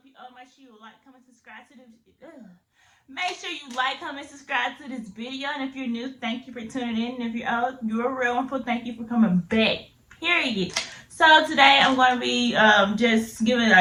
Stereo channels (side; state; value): both; identical; correlation 1.00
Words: up, you old? Make sure you like, comment, subscribe to this. Make sure you like, comment, subscribe to this video. And if you're new, thank you for tuning in. And if you're old, you're a real one. Thank you for coming back. Period. So today I'm going to be just giving